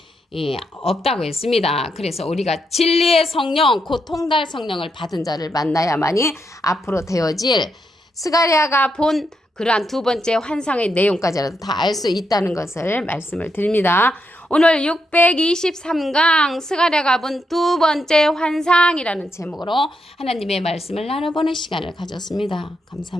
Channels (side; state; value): both; normal; correlation 0.81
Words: 없다고 했습니다. 그래서 우리가 진리의 성령 곧 통달 성령을 받은 자를 만나야만이 앞으로 되어질 스가랴가 본 그러한 2번째 환상의 내용까지라도 다 알 수 있다는 것을 말씀을 드립니다. 오늘 623강 스가랴가 본 2번째 환상이라는 제목으로 하나님의 말씀을 나눠보는 시간을 가졌습니다.